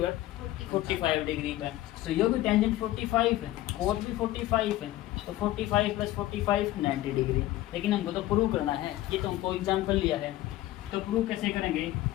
45 डिग्री का, तो ये भी टेंजेंट 45 है, कोट भी 45 है, तो 45 प्लस 45 90 डिग्री। लेकिन हमको तो प्रूव करना है, ये तो हमको एग्जाम्पल लिया है, तो प्रूव कैसे करेंगे,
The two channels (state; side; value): quieter; right; 15.5 dB